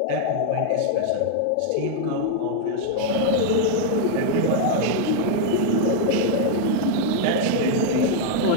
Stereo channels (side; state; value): both; different; correlation 0.00